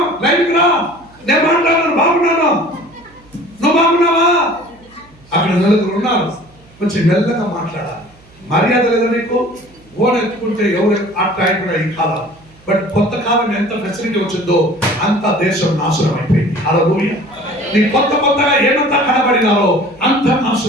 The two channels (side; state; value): right; noise; hum, 27 dB below the sound